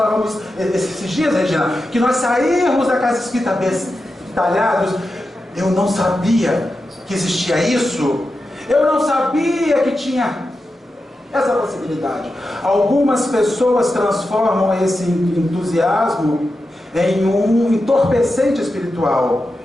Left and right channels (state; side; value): normal; both; correlation 0.90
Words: esses dias, Regina, que nós sairmos da casa espírita bestalhados. Eu não sabia que existia isso. Eu não sabia que tinha essa possibilidade. Algumas pessoas transformam esse entusiasmo em um entorpecente espiritual.